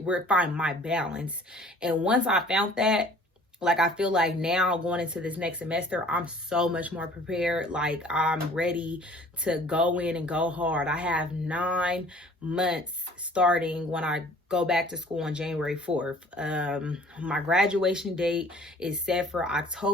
find my balance. And once I found that, like, I feel like now going into this next semester, I'm so much more prepared. Like, I'm ready to go in and go hard. I have 9 months starting when I go back to school on January 4th. My graduation date is set for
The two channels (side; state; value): both; normal; correlation 0.52